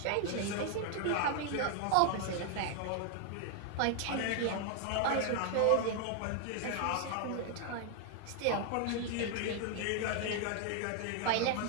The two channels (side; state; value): both; different; correlation 0.00